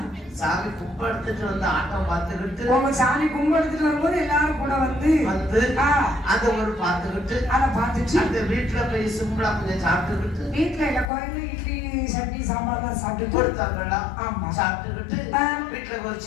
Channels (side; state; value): right; drops out; at 11.1 s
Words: சாமி கும்பிடுத்துட்டு வந்து ஆட்டம் பார்த்துக்கிட்டு உங்க சாமி கும்பிடுத்துட்டு வரும்போது எல்லாரும் கூட வந்து அத ஒரு பார்த்துக்கிட்டு அதை பார்த்துட்டு அந்த வீட்டுல போய் சிம்பிளா கொஞ்சம் சாப்பிட்டுக்கிட்டு வீட்டுல இல்ல கோயில இட்லி சட்னி சாம்பார் எல்லாம் சாப்பிட்டு கொடுத்தாங்களா ஆமா சாப்பிட்டுக்கிட்டு வீட்டுல ஒரு